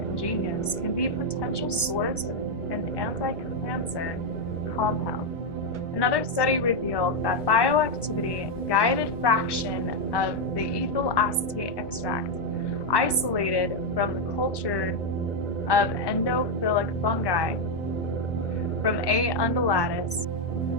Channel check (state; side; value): late; right; 1.1 ms